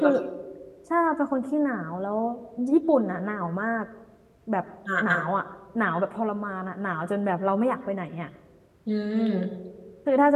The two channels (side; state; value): both; identical; correlation 1.00